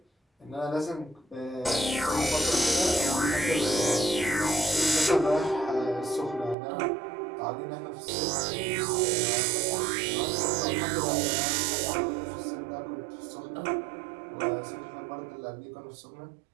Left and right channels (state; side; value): drops out; left; at 6.6 s